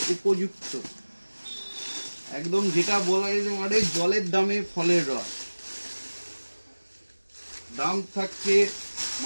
উপযুক্ত, একদম যেটা বলা যেতে পারে জলের দামে ফলের রস। দাম থাকছে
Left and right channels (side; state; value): both; inverted; correlation -1.00